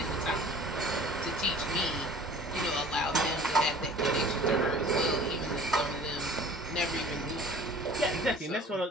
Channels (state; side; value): normal; both; correlation 0.46